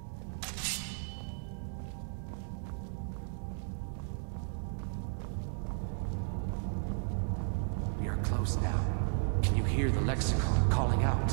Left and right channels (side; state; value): left; silent; digital silence